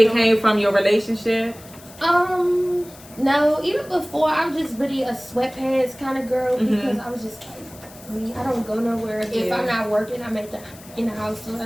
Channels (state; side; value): noise; left; hiss, 21 dB below the sound